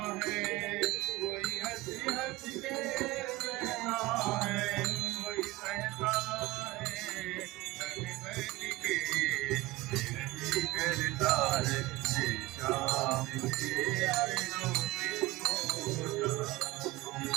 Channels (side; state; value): left; quieter; 19.6 dB